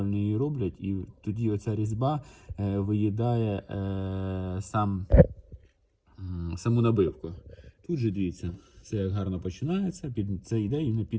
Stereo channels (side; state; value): both; identical; correlation 1.00